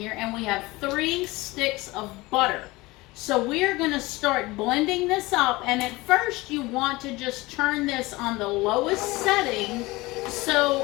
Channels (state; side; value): quieter; right; 21.3 dB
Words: and we have 3 sticks of butter. So we're going to start blending this up, and at first you want to just turn this on the lowest setting